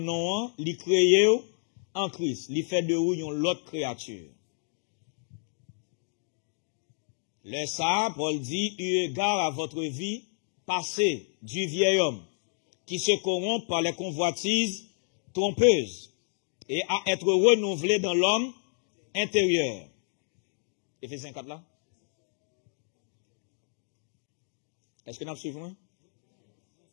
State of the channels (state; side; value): silent; right; 58 dB below the other